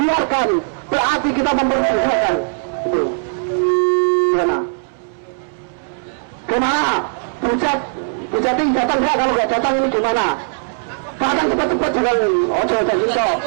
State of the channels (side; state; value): left; silent; 67 dB below the other